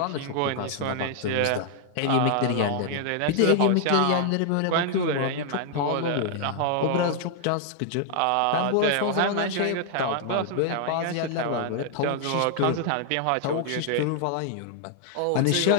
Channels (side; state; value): both; different; correlation 0.00